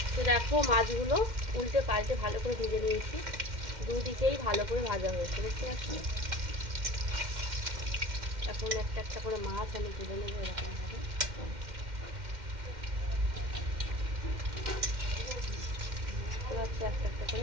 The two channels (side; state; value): left; late; 2.1 ms